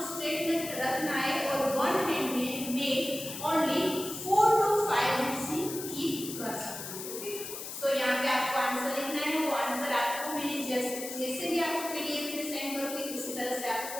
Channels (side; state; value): left; noise; hiss, 8 dB below the sound